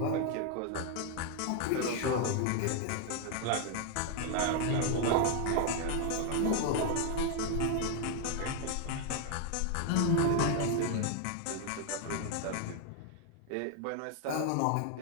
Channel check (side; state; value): both; different; correlation 0.00